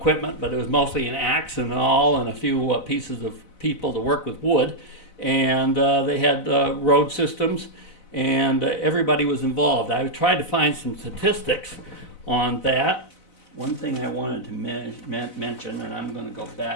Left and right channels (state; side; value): late; right; 4.0 ms